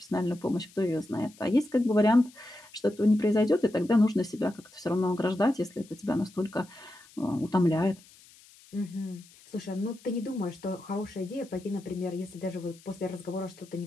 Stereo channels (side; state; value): left; noise; hiss, 25 dB below the sound